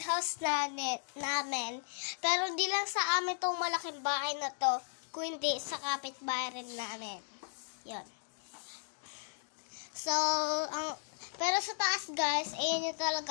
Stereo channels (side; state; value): right; silent; digital silence